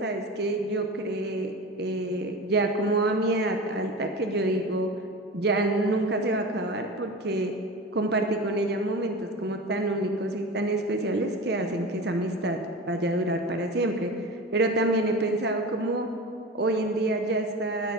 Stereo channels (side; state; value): both; normal; correlation 0.31